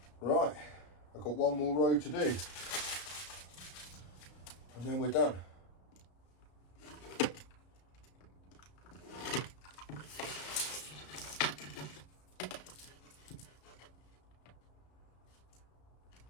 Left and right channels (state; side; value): late; right; 33 ms